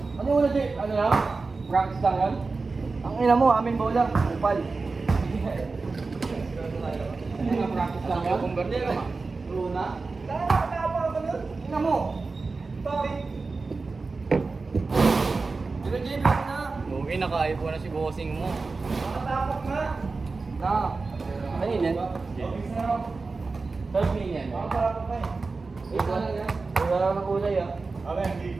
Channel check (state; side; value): quieter; left; 4.0 dB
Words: Ano yung una, Jay? Ano lang? Practice lang yan? Ang ina mo, amin bola. Upal. Ano nga, practice lang yan? Converter ka ma? Luna? Nakakapa ka nun? Ina mo. Bakit? Pero Jay, black na. Lugi, naka-ipo na si bossing mo. Nakatapak na. Na. Ano yun yan? Third pin yan. Nakatapak na eh. Wait lang yan. Wala lang ng kulay ah. Abim, di.